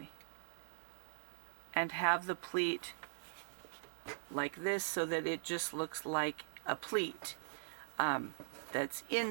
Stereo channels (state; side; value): silent; left; 50 dB below the other